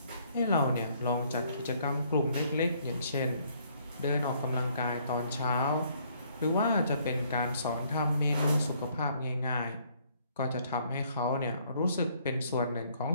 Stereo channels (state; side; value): inverted; both; correlation -0.65